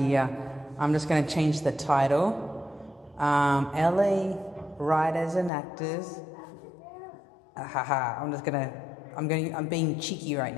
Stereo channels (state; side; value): drops out; right; at 5.5 s